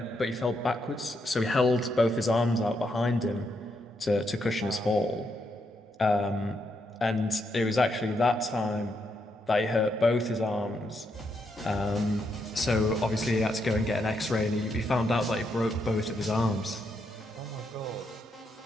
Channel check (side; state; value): both; normal; correlation 0.79